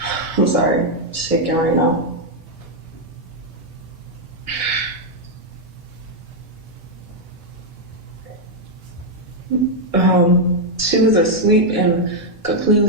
I'm sorry, shaking right now. She was asleep and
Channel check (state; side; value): normal; both; correlation -0.01